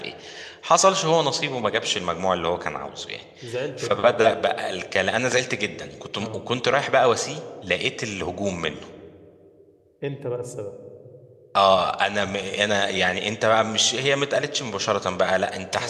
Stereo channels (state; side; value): identical; both; correlation 1.00